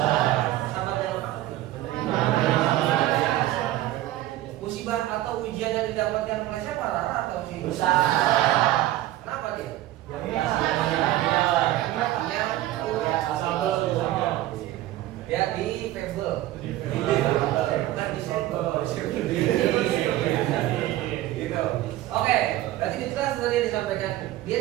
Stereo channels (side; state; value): left; quieter; 15.1 dB